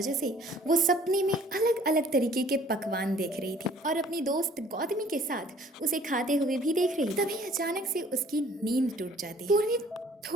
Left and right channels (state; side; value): normal; both; correlation 0.55